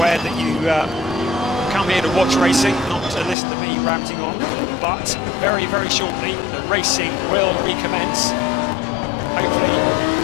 that you come here to watch racing, not to listen to me ranting on, but very, very shortly the racing will recommence. Hopefully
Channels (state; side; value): drops out; right; at 3.4 s